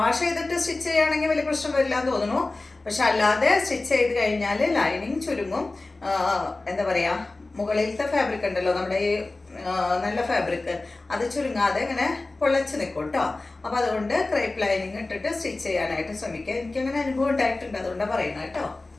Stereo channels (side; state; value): right; quieter; 3.2 dB